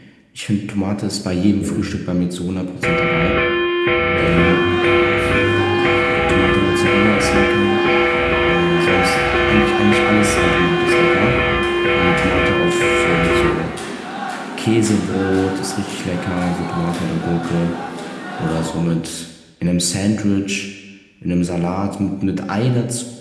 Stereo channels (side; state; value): both; identical; correlation 1.00